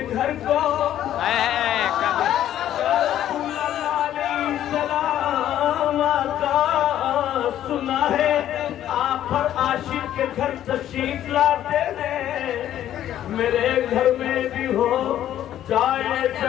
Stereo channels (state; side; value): quieter; right; 11.7 dB